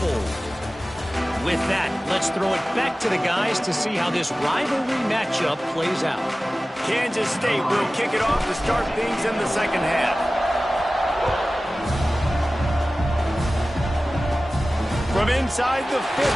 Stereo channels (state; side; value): normal; both; correlation 0.96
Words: With that, let's throw it back to the guys to see how this rivalry matchup plays out. Kansas State will kick it off to start things in the second half. From inside the 15,